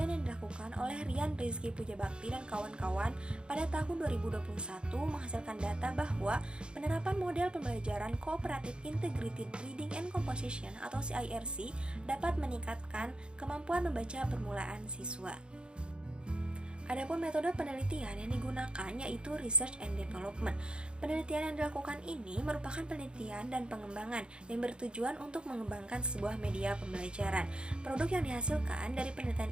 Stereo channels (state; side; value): late; left; 0.053 ms